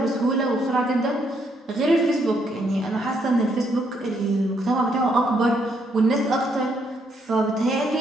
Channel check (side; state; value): both; normal; correlation 0.73